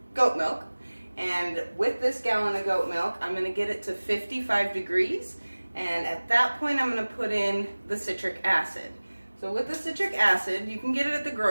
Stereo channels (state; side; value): inverted; both; correlation -1.00